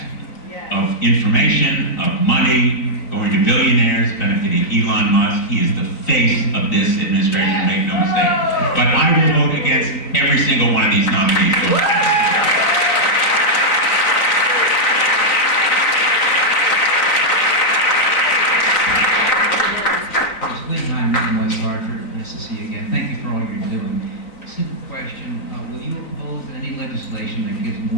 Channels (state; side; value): late; right; 3.9 ms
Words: of information, of money, going to billionaires, benefiting Elon Musk. He is the face of this administration, make no mistake. But I will vote against every single one of these nominees. Hi, I'm Mr. Hartford. Nice to see you again. Thank you for all you're doing. Simple question. Will you oppose any legislation that gives